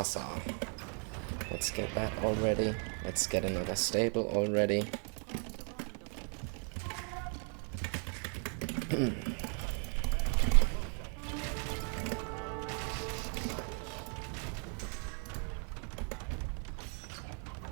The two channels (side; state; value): left; quieter; 39.7 dB